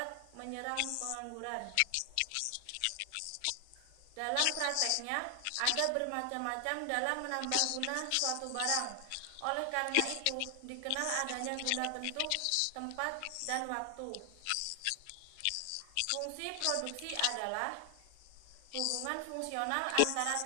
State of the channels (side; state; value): both; different; correlation 0.00